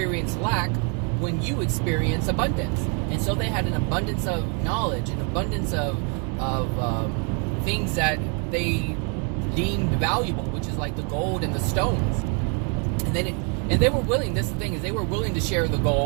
lack when you experience abundance. And so they had an abundance of knowledge, an abundance of things that they deemed valuable, which is like the gold and the stones. And they were willing. This is the thing, is they were willing to share the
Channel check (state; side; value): quieter; left; 36.5 dB